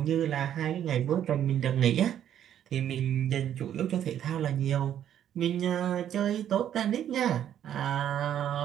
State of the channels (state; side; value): quieter; left; 10.3 dB